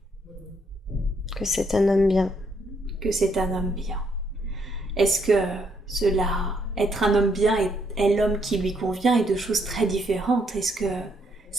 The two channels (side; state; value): both; normal; correlation 0.73